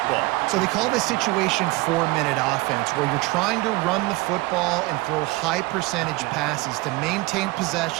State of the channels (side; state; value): left; quieter; 22.1 dB